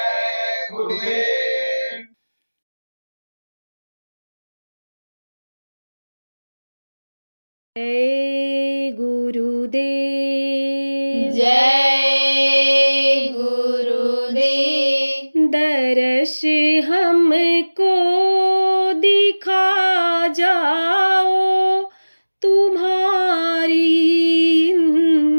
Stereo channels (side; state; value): both; inverted; correlation -1.00